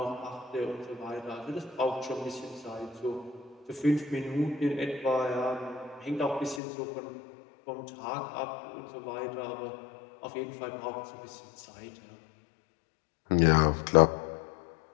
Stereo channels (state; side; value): drops out; right; at 6.6 s